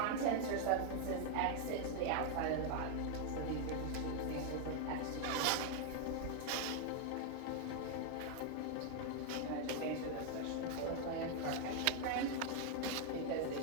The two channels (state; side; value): different; both; correlation 0.00